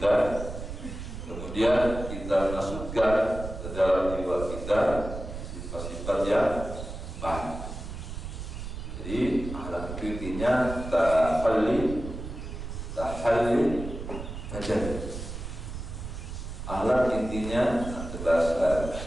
kemudian kemudian kita masukkan ke dalam jiwa kita sifat-sifat yang baik. Jadi akhlak itu intinya tahalli tajalli. Akhlak intinya bahasa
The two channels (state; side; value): noise; right; rumble, 8 dB below the sound